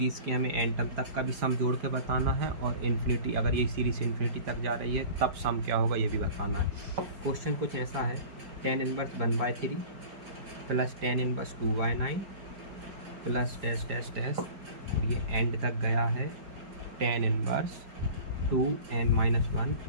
के हमें n टर्म तक का भी सम जोड़ के बताना है, और इन्फिनिटी, अगर ये सीरीज़ इन्फिनिटी तक जा रही है तब सम क्या होगा ये भी बताना है। क्वेश्चन कुछ ऐसा है, tan inverse 1/3 plus tan inverse 2/9 plus dash dash dash, और ये एंड तक गया है tan inverse 2n-1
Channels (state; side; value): late; left; 4.9 ms